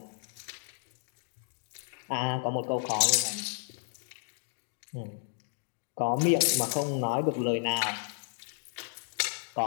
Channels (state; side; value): silent; right; digital silence